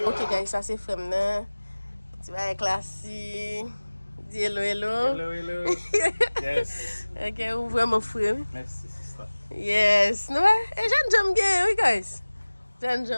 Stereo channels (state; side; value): inverted; both; correlation -1.00